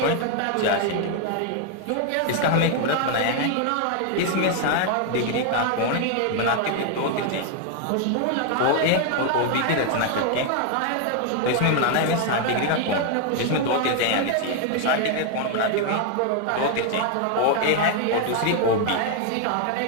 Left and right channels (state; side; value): different; both; correlation 0.00